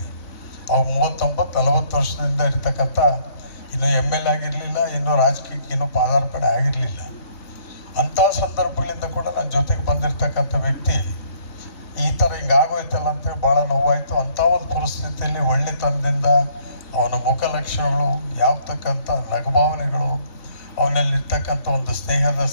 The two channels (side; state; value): right; late; 3.6 ms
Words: ಅವ್ನು 39-40 ವರ್ಷದಿಂದ ಇರ್ತಕ್ಕಂಥ, ಇನ್ನೂ ML ಆಗಿರಲಿಲ್ಲ, ಇನ್ನೂ ರಾಜಕೀಯಕ್ಕೆ ಇನ್ನೂ ಪಾದಾರ್ಪಣೆ ಆಗಿರಲಿಲ್ಲ. ಅಂಥ ಸಂದರ್ಭಗಳಿಂದ ಕೂಡ ನನ್ನ ಜೊತೆಗೆ ಬಂದಿರತಕ್ಕಂಥ ವ್ಯಕ್ತಿ ಈ ಥರ ಹಿಂಗಾಗೋಯ್ತಲ್ಲ ಅಂತೇಳಿ ಭಾಳ ನೋವಾಯಿತು. ಅಂಥ ಒಂದು ಪರಿಸ್ಥಿತಿಯಲ್ಲಿ ಒಳ್ಳೆತನದಿಂದ ಅವನ ಮುಖಲಕ್ಷಣಗಳು, ಯಾವತಕ್ಕಂಥ ನಗುಭಾವನೆಗಳು, ಅವನಲ್ಲಿರ್ತಕ್ಕಂಥ ಒಂದು ಸ್ನೇಹದ